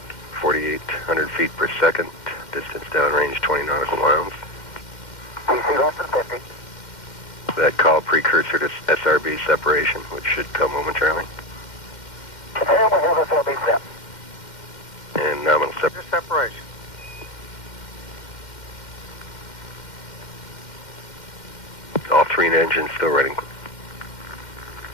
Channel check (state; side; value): late; right; 2.1 ms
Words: 4,800 feet per second. Distance downrange 20 nautical miles. PC less than 50. That call precursor to SRB separation, which should come momentarily. And we have SRB set. And nominal Separation. All three engines still running.